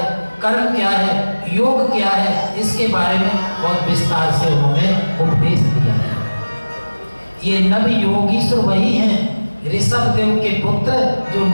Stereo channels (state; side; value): inverted; both; correlation -1.00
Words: कर्म क्या है, योग क्या है, इसके बारे में बहुत विस्तार से उन्होंने उपदेश दिया है। ये नव योगीश्वर वही हैं ऋषभ देव के पुत्र जो